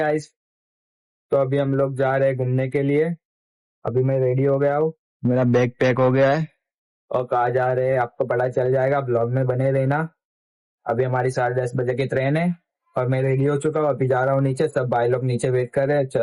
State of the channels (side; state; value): both; identical; correlation 1.00